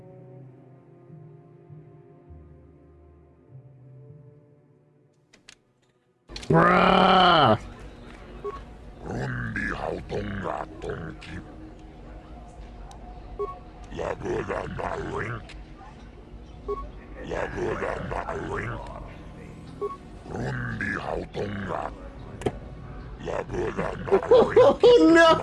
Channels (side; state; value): both; identical; correlation 1.00